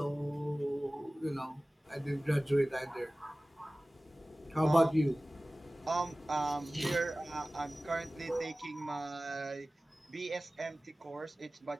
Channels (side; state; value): both; normal; correlation 0.98